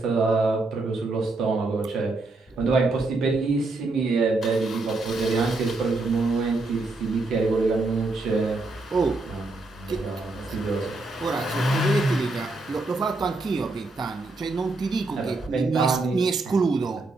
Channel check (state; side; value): quieter; left; 3.2 dB